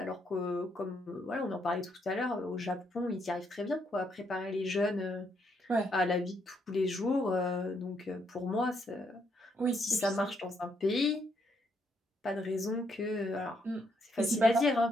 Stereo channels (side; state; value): both; normal; correlation 0.75